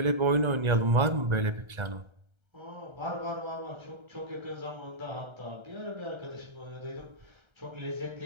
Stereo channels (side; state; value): left; late; 1.3 ms